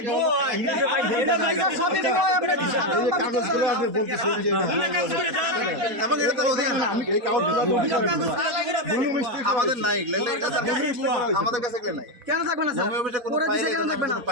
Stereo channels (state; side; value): late; left; 4.1 ms